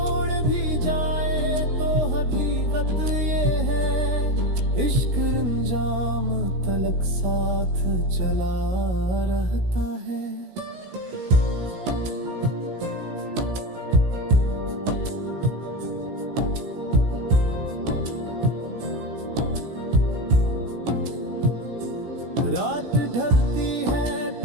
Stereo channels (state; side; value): late; left; 16 ms